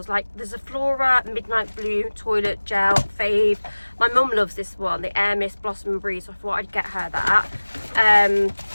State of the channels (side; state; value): both; inverted; correlation -1.00